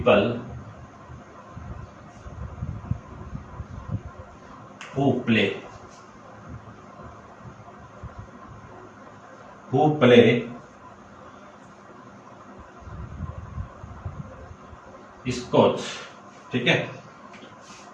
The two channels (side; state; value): both; identical; correlation 1.00